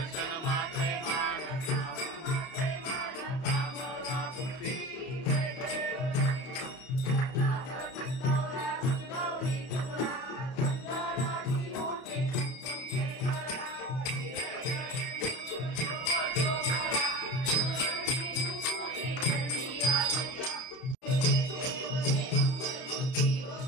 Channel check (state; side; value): late; right; 31 ms